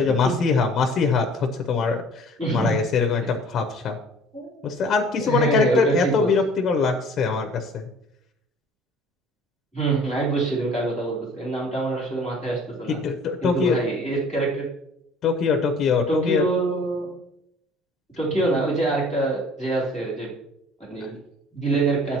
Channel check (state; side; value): normal; both; correlation 0.50